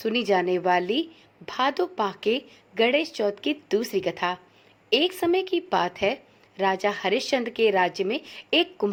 जाने वाली भादो माह के गणेश चौथ की दूसरी कथा। एक समय की बात है, राजा हरिश्चंद्र के राज्य में एक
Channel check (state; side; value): identical; both; correlation 1.00